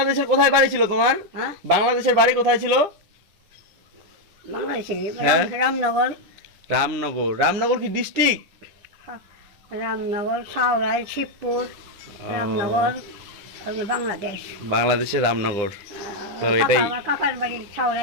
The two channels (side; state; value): left; late; 10 ms